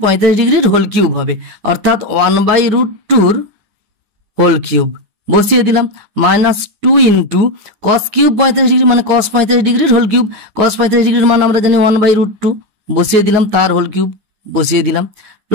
45 ডিগ্রির হোল কিউব হবে, অর্থাৎ 1/√2 হোল কিউব বসিয়ে দিলাম, minus 2 into cos cube 45 degree মানে কস 45 ডিগ্রির হোল কিউব, কস 45 ডিগ্রির মান আমরা জানি 1/√2 বসিয়ে দিলাম, তার হোল কিউব বসিয়ে দিলাম,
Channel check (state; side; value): late; left; 9.5 ms